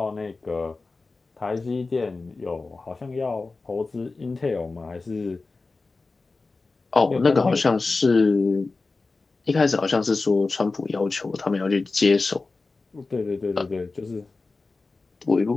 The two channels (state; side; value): quieter; right; 3.8 dB